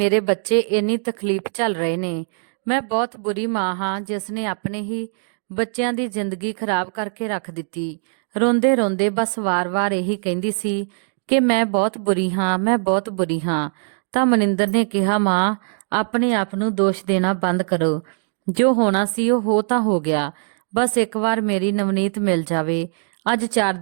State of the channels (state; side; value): silent; left; 63 dB below the other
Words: ਬੱਚੇ ਇੰਨੀ ਤਕਲੀਫ ਝੱਲ ਰਹੇ ਨੇ। ਮੈਂ ਬਹੁਤ ਬੁਰੀ ਮਾਂ ਹਾਂ ਜਿਸ ਨੇ ਆਪਣੇ ਹੀ ਬੱਚਿਆਂ ਦੀ ਜ਼ਿੰਦਗੀ ਖਰਾਬ ਕਰਕੇ ਰੱਖ ਦਿੱਤੀ। ਰੋਂਦੇ ਰੋਂਦੇ ਬਸ ਵਾਰ-ਵਾਰ ਇਹੀ ਕਹਿੰਦੀ ਸੀ ਕਿ ਮੈਂ ਬਹੁਤ ਬੁਰੀ ਹਾਂ, ਮੈਂ ਬਹੁਤ ਬੁਰੀ ਹਾਂ। ਤਾਂ ਮਨਿੰਦਰ ਨੇ ਕਿਹਾ, ਮਾਂ ਆਪਣੇ ਆਪ ਨੂੰ ਦੋਸ਼ ਦੇਣਾ ਬੰਦ ਕਰੋ। ਜੋ ਹੋਣਾ ਸੀ ਉਹ ਹੋ ਤਾਂ ਹੋ ਗਿਆ। ਬਸ ਇੱਕ ਵਾਰ ਮੇਰੀ ਨਵਨੀਤ ਮਿਲ ਜਾਵੇ। ਅੱਜ 4